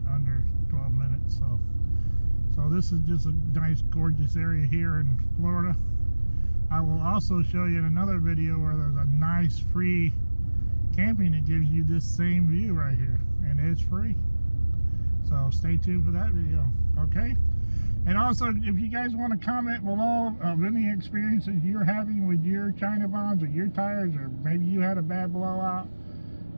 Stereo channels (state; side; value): inverted; both; correlation -1.00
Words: under 12 minutes. So this is just a nice, gorgeous area here in Florida. I will also show you in another video where there's a nice free camping that gives you this same view right here, and it's free. So stay tuned for that video, okay? And also, if you guys want to comment below of any experiences you're having with your China bonds or your tires, or maybe you had a bad blowout,